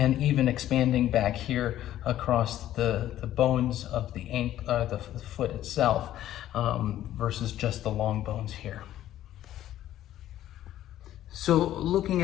even expanding back here across the bones of the foot itself versus just the long bones here. So looking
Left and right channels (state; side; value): quieter; right; 12.8 dB